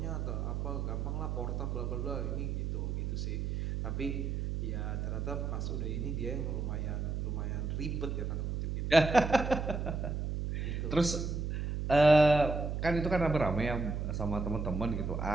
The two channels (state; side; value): noise; right; hum, 2 dB below the sound